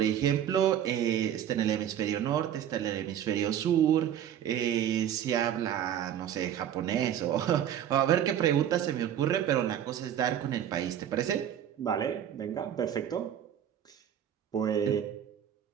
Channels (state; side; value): quieter; left; 10.1 dB